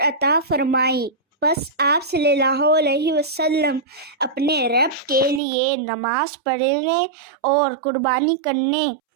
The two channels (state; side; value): drops out; left; at 5.4 s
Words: अता फरमाई, बस आप सल्लल्लाहु अलैहि वसल्लम अपने रब के लिए नमाज पढ़ने और कुर्बानी करने